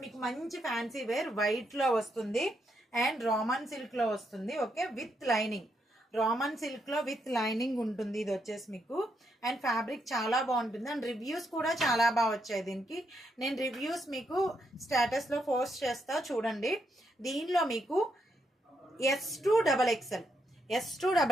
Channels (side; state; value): both; normal; correlation 0.79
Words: మీకు మంచి ఫ్యాన్సీ వేర్ వైట్ లో వస్తుంది అండ్ రామన్ సిల్క్ లో వస్తుంది. Okay, with lining, Roman silk లో విత్ లైనింగ్ ఉంటుంది. ఇది వచ్చేసి మీకు అండ్ ఫ్యాబ్రిక్ చాలా బాగుంటుంది అండ్ రివ్యూస్ కూడా చాలా బాగా వచ్చాయి దీనికి. నేను రివ్యూస్ మీకు స్టేటస్ లో పోస్ట్ చేస్తా చూడండి. దీనిలో మీకు S2XXL